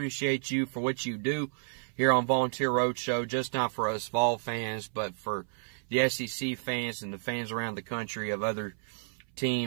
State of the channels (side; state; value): left; silent; 57 dB below the other